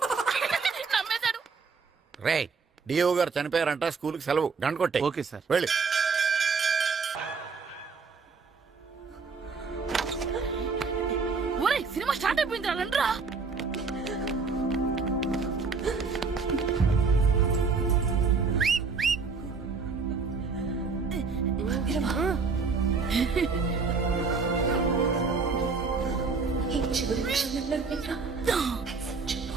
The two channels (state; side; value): quieter; left; 4.8 dB